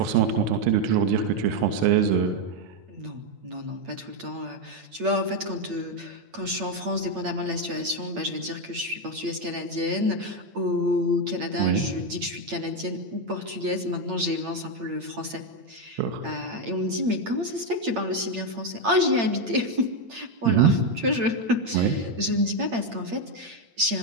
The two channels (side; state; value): left; late; 8.7 ms